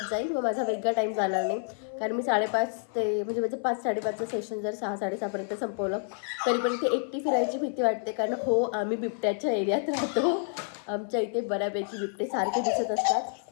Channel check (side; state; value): right; silent; 55 dB below the other